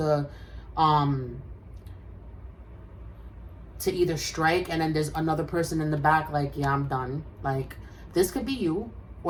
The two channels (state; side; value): identical; both; correlation 1.00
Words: either strike, and then there's another person in the back like, yeah, I'm done. Like this could be you,